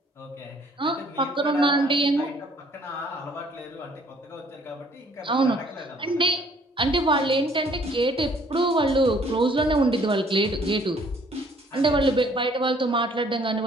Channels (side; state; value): both; normal; correlation 0.60